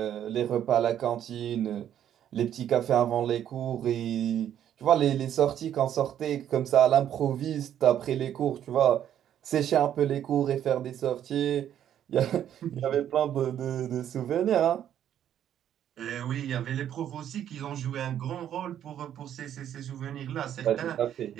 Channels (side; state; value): left; quieter; 10.3 dB